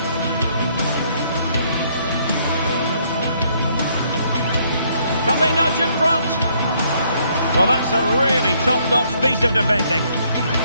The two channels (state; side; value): inverted; both; correlation -0.68